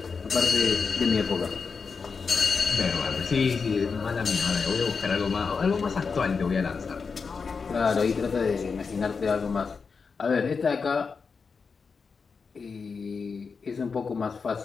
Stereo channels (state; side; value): quieter; right; 5.2 dB